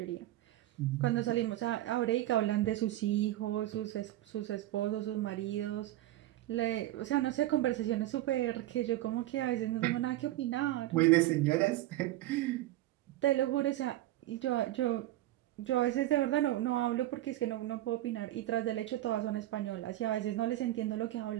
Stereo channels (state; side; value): quieter; left; 15.1 dB